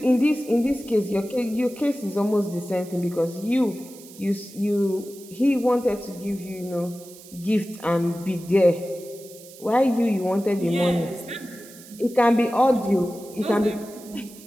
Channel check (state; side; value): noise; right; hiss, 19 dB below the sound